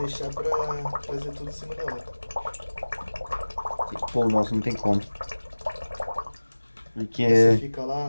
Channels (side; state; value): both; inverted; correlation -1.00